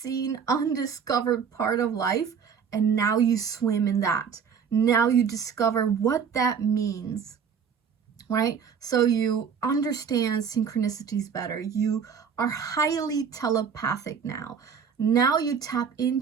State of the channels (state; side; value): quieter; left; 6.8 dB